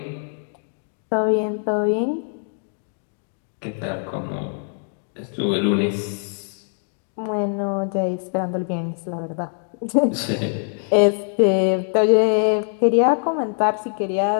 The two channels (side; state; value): right; silent; digital silence